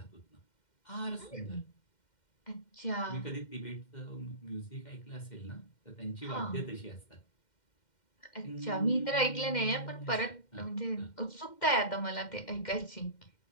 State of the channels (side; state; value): right; late; 2.1 ms